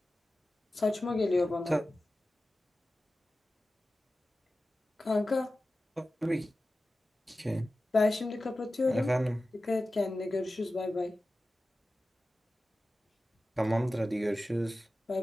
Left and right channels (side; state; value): both; normal; correlation 0.95